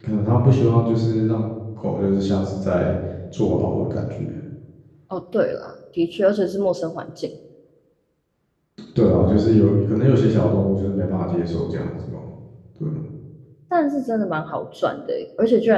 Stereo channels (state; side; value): identical; both; correlation 1.00